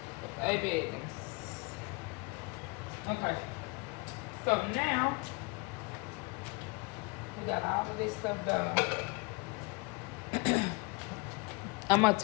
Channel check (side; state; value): right; quieter; 29.2 dB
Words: But baby, okay. So now, we got all of this stuff done. I'm gonna